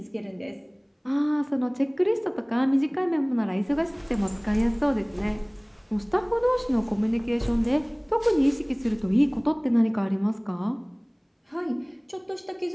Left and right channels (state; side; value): identical; both; correlation 1.00